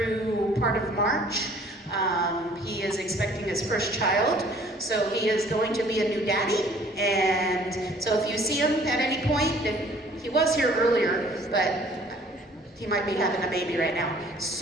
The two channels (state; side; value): normal; both; correlation 0.55